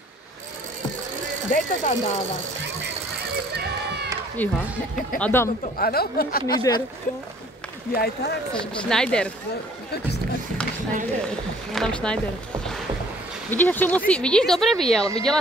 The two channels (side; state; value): both; normal; correlation 0.56